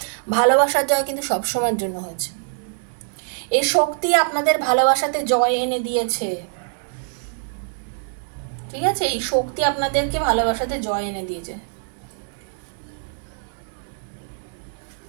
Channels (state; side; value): silent; left; 62 dB below the other